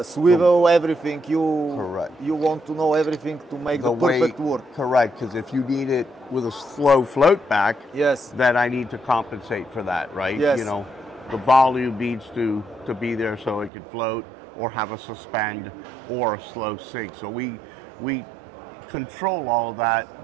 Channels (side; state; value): left; drops out; at 13.7 s